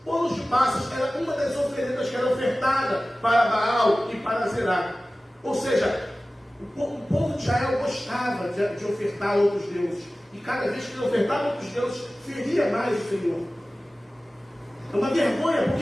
Bolos de passas era uma das oferendas que era ofertada para Baal e para Zerá. Ou seja, o povo de Israel gostava de ofertar a outros deuses. E cada vez que ele ofertava a outros deuses, feria mais o Senhor. É uma vergonha,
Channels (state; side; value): normal; both; correlation 0.97